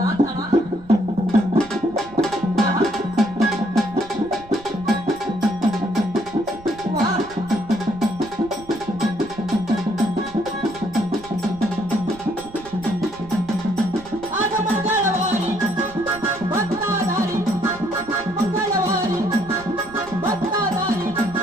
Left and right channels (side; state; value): right; noise; rumble, 20 dB below the sound